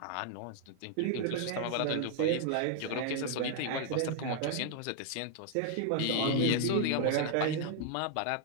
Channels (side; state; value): both; different; correlation 0.00